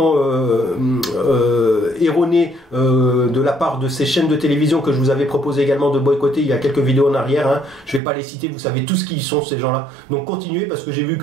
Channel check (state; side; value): drops out; left; at 8.0 s